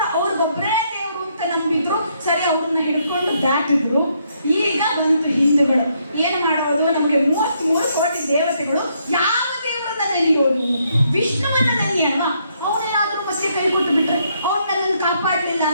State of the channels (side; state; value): both; inverted; correlation -0.74